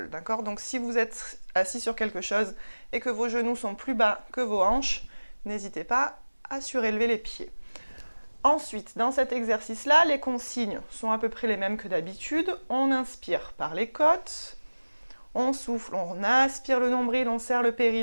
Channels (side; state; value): both; inverted; correlation -1.00